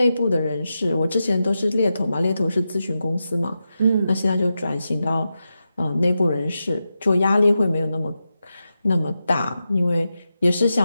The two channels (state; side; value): inverted; both; correlation -0.90